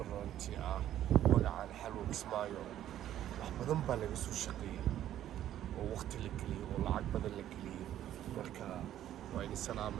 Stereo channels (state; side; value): quieter; left; 11.9 dB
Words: ah magacaan xalwa Kismaayo wax badan baa laga soo shaqeeyay oo waqti la geliyay oo lacag badan la geliyay marka wayna